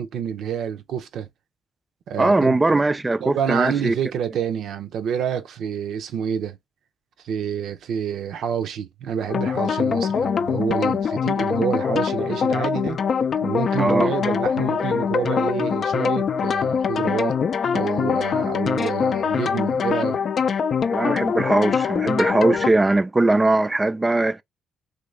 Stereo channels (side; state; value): both; normal; correlation 0.79